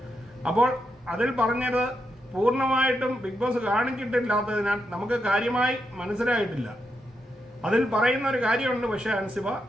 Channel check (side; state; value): both; normal; correlation 0.83